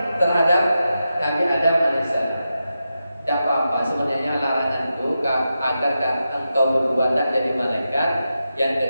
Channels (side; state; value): both; inverted; correlation -0.89